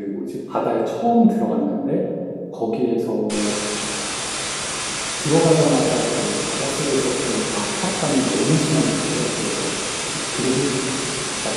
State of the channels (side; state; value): both; identical; correlation 1.00